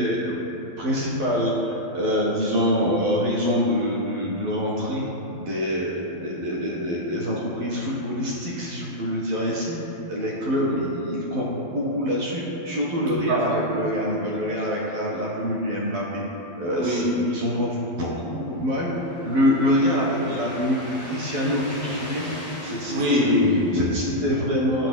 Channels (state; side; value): late; left; 12 ms